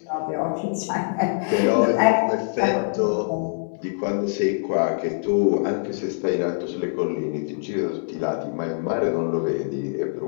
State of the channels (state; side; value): silent; right; 63 dB below the other